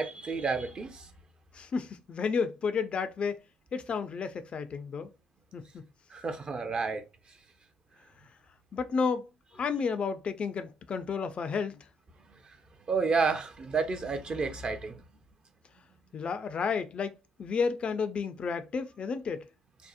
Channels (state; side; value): normal; both; correlation 0.74